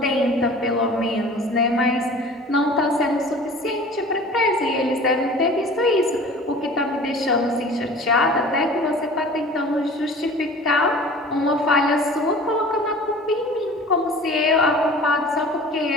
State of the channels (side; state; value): both; normal; correlation 0.43